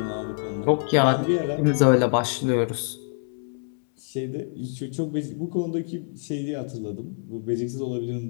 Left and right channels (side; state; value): right; silent; 61 dB below the other